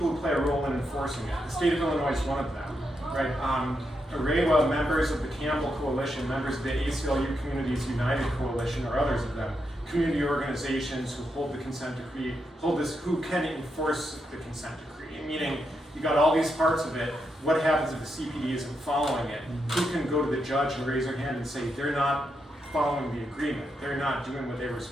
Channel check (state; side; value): normal; both; correlation 0.83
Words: who play a role in enforcing it. The state of Illinois is one of them, right? AREWA, members of the Campbell Coalition, members of the ACLU Communities United Coalition, or others of them, community organizations who hold the consent decree, who can enforce the consent decree. Meaning, you got all these parts of it. What happens if the CPD isn't following it? Who can go to the judge and raise their hand and say they're not following the agreement. They're not doing what they were